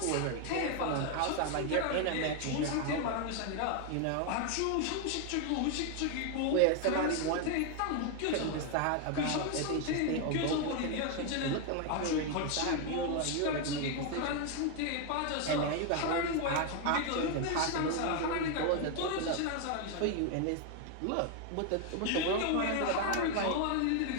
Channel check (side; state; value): both; different; correlation 0.01